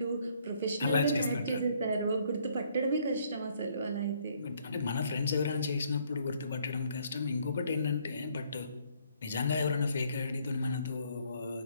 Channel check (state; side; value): inverted; both; correlation -0.66